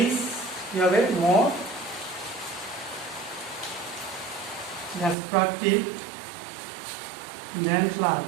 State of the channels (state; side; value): drops out; left; at 5.2 s